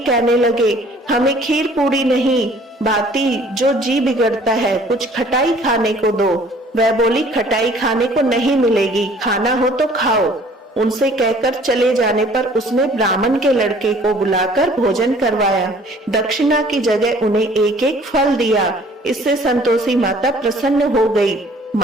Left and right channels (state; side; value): normal; both; correlation 0.54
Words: कहने लगे, हमें खीर पूरी नहीं, बाती जो जी बिगड़ता है, कुछ खटाई खाने को दो। वह बोली, खटाई खाने को नहीं मिलेगी, खाना हो तो खाओ। उनसे कहकर चले जाने पर उसने ब्राह्मण के लड़के को बुलाकर भोजन करवाया। दक्षिणा की जगह उन्हें एक एक फल दिया। इससे संतोषी माता प्रसन्न हो गई।